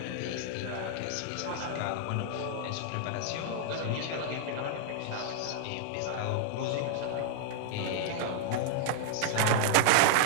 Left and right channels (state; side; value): different; both; correlation -0.01